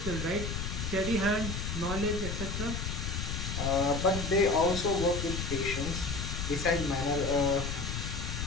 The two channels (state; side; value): noise; left; rumble, 3 dB below the sound